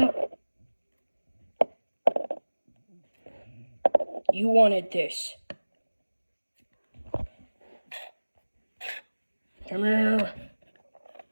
You wanted this. Come here.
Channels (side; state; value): both; inverted; correlation -1.00